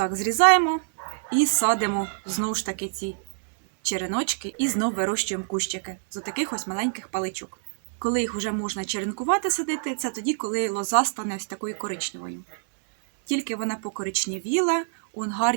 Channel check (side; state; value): left; silent; 61 dB below the other